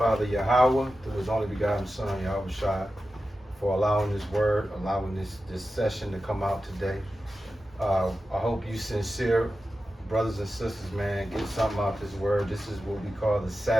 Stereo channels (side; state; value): both; normal; correlation 0.92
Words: Yahweh, through His only begotten Son, Yahweh Shai, for allowing this word, allowing this session to come out today. I hope you sincere brothers and sisters, man, get something out this word. This is what we call the